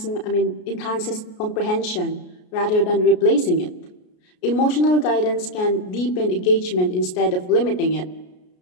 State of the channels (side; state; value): right; late; 33 ms